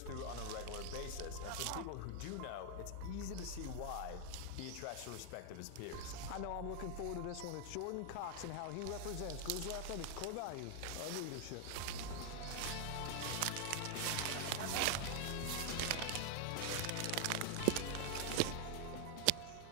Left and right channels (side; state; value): both; different; correlation 0.00